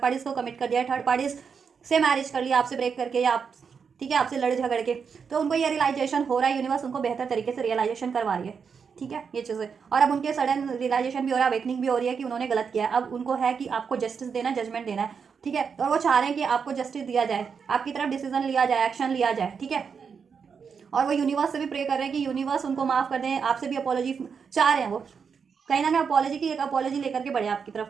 पार्टीज को कमिट कर दिया, थर्ड पार्टीज से मैरिज कर लिया आपसे ब्रेक करके, या आप, ठीक है, आपसे लड़ झगड़ के, तो उनको ये रियलाइजेशन हो रहा है, यूनिवर्स उनको बेहतर तरीके से रियलाइजेशन करवा रही है, ठीक है, ये चीज़ें, और अब उनके सडन रियलाइजेशन भी हो रहा है, अवेकनिंग भी हो रही है कि उन्होंने गलत किया है, अब उनको है कि आपको जस्टिस देना, जजमेंट देना है, ठीक है, और वो चाह रहे हैं कि आपको जस्टिस दिया जाए, आपकी तरफ डिसीजन लिया जाए, एक्शन लिया जाए, ठीक है, और वो यूनिवर्स से भी प्रे कर रहे हैं कि यूनिवर्स उनको माफ़ कर दें, आपसे भी अपॉलॉजी चाह रहे हैं वो, कहीं ना कहीं अपॉलॉजी की एक अपॉलॉजी लेकर के बढ़े आपकी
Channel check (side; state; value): left; quieter; 6.2 dB